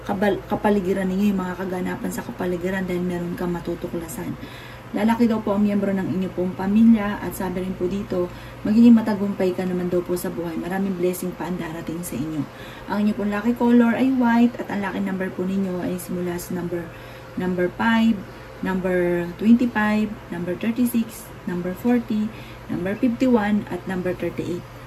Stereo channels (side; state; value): both; identical; correlation 1.00